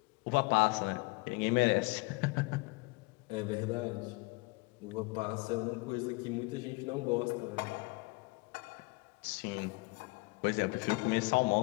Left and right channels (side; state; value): right; quieter; 26.8 dB